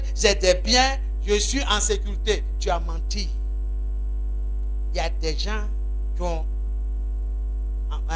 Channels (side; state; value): both; identical; correlation 1.00